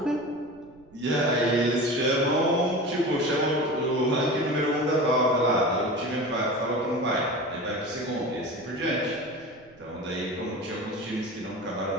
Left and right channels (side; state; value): right; noise; rumble, 28 dB below the sound